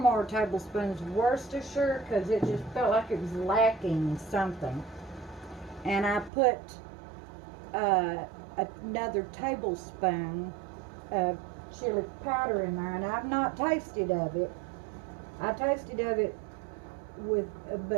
tablespoons of Worcestershire, because it just felt like it was lacking something. And I put another tablespoon of chili powder in there, and I've not tasted of it. I tasted of it with,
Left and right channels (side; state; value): left; drops out; at 6.3 s